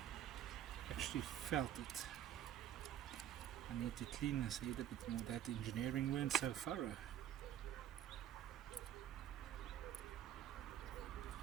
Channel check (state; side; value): quieter; left; 11.2 dB